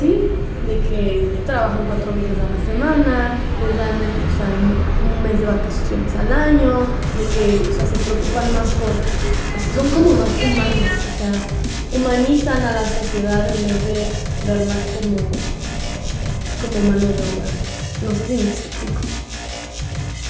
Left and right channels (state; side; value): identical; both; correlation 1.00